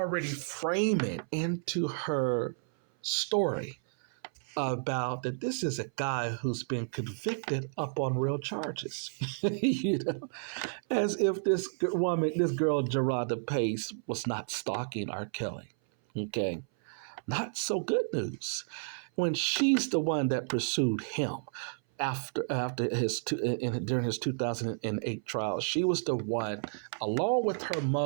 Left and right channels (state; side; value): silent; left; 57 dB below the other